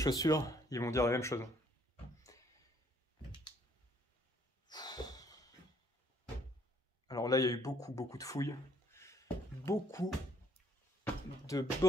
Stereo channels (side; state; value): both; normal; correlation 0.65